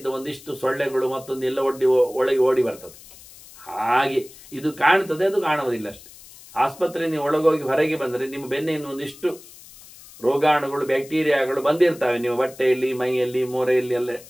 ಒಂದಿಷ್ಟು ಸೊಳ್ಳೆಗಳು ಮತ್ತೊಂದು ಎಲ್ಲ ಒಳಗೆ ಓಡಿ ಬರ್ತದೆ. ಹಾಗೆ ಇದು ಕಾಣ್ತದೆ, ಅದು ಕಾಣುವುದಿಲ್ಲ ಅಷ್ಟೆ. ಆಸ್ಪತ್ರೆ ನೀವು ಒಳಗೋಗಿ ಹೊರಗೆ ಬಂದರೆ ನಿಮ್ಮ ಬೆನ್ನೆಯನ್ನು ಒಂದಿಷ್ಟು ರೋಗಾಣುಗಳು, ಬ್ಯಾಕ್ಟೀರಿಯಾಗಳು ಬಂದಿರ್ತವೆ ನಿಮ್ಮ ಬಟ್ಟೆಯಲ್ಲಿ, ಮೈಯಲ್ಲಿ, ಮೋರೆಯಲ್ಲಿ ಎಲ್ಲ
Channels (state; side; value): noise; left; hiss, 20 dB below the sound